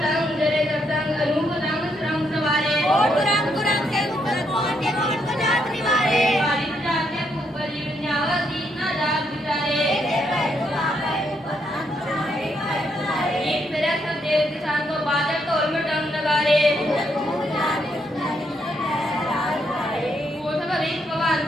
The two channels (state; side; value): normal; both; correlation 0.76